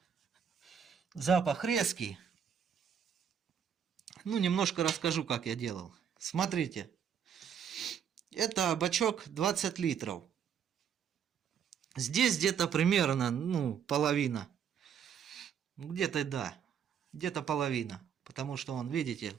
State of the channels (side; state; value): left; quieter; 8.1 dB